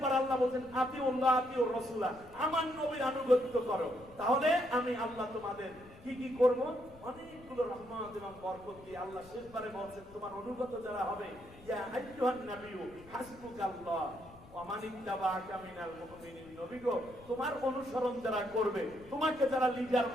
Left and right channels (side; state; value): left; noise; rumble, 21 dB below the sound